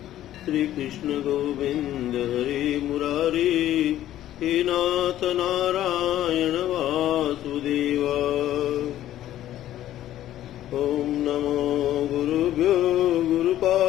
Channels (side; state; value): right; quieter; 12.9 dB